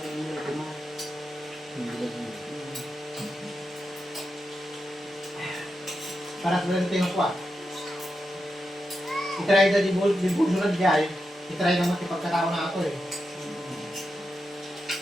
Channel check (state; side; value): normal; both; correlation 0.88